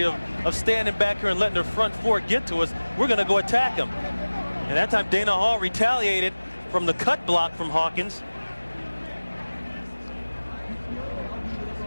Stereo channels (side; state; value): both; inverted; correlation -1.00